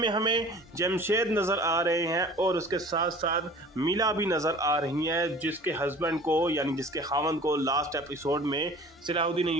हमें जमशेद नज़र आ रहे हैं और उसके साथ साथ मीला भी नज़र आ रही हैं, जिसके हस्बैंड को यानी जिसके खावंद को लास्ट एपिसोड में सलाहुद्दीन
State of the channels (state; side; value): normal; both; correlation 0.45